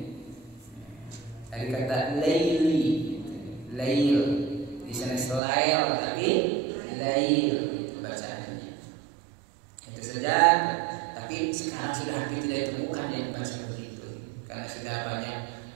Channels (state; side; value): drops out; left; at 5.4 s